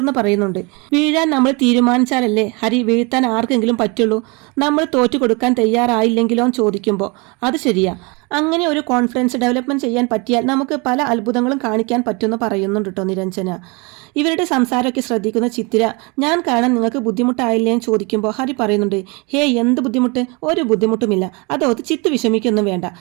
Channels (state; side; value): quieter; left; 28.9 dB